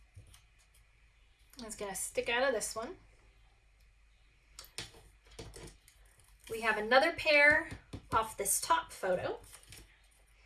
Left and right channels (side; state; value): both; identical; correlation 1.00